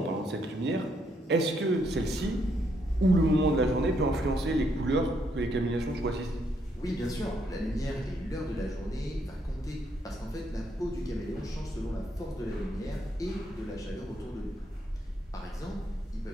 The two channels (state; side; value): normal; both; correlation 0.74